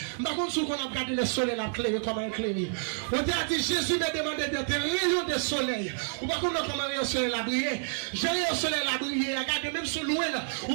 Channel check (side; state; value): left; silent; 58 dB below the other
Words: Par contre, si on a regardé le soleil, la clé, comment éclairer. On a dit, Jésus m'a demandé d'être rayon de soleil. Ou par contre, comment rayon soleil la briller. J'ai rayon soleil la briller. Regardez, même sur loin,